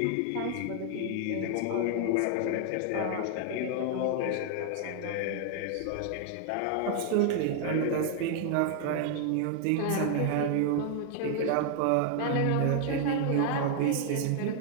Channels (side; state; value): both; different; correlation 0.00